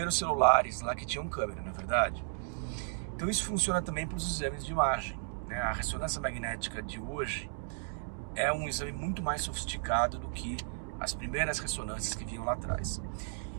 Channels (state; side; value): silent; left; 55 dB below the other